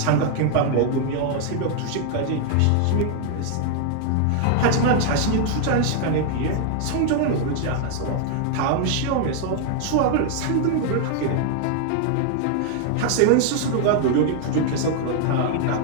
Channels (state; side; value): different; both; correlation 0.00